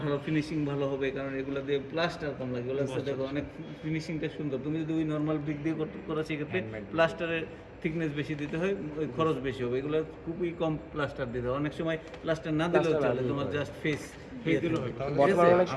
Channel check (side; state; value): both; identical; correlation 1.00